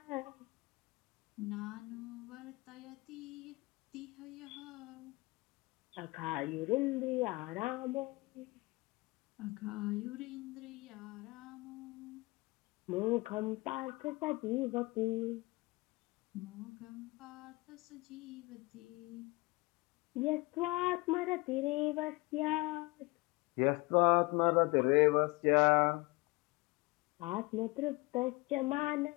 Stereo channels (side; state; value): right; quieter; 24.2 dB